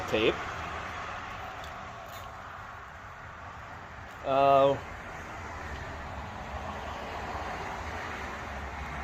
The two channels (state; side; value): identical; both; correlation 1.00